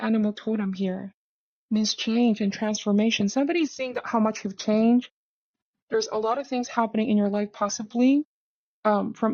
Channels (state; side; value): identical; both; correlation 1.00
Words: totem here means change and transformation. Somebody's seeing how much you've changed. There's a lot of things happening in your life, possibly